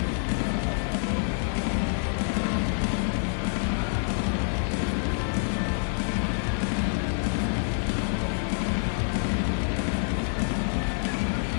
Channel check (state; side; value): silent; right; digital silence